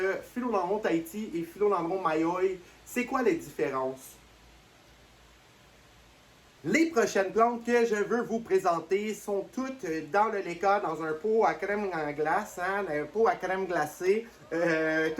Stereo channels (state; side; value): identical; both; correlation 1.00